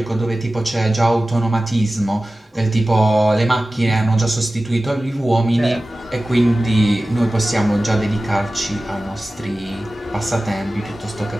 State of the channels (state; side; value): normal; both; correlation 0.96